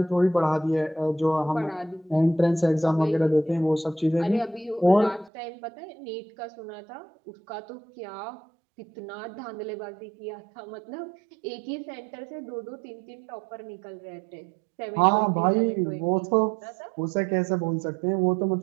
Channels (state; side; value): drops out; left; at 5.3 s